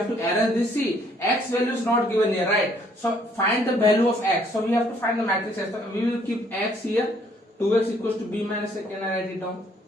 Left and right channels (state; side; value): normal; both; correlation 0.64